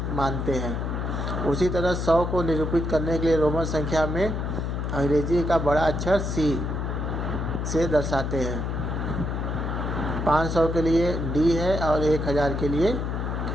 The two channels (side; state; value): left; noise; hum, 2 dB below the sound